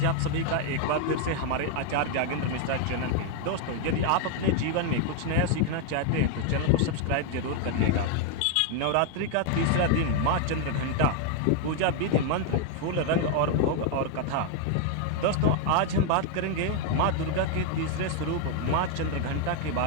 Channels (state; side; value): different; both; correlation 0.01